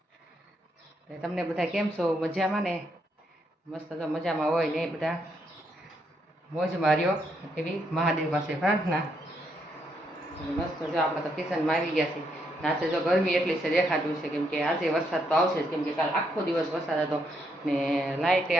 તમને બધા કેમ છો? મજામાં ને? મસ્ત તો મજામાં હોય ને બધા મોજ માર્યો એવી મહાદેવ પાસે પ્રાર્થના. મસ્ત જો આપણે તો કિચનમાં આવી ગયા છીએ. આજે જો ગરમી એટલી છે દેખાતું છે, કેમ કે આજે વરસાદ તો આવશે જ, કેમ કે કાલ આખો દિવસ વરસાદ હતો ને લાઇટે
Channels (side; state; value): both; normal; correlation 0.76